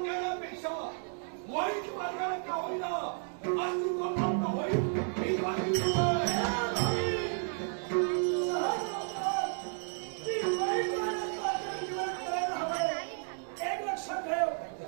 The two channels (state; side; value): silent; left; 55 dB below the other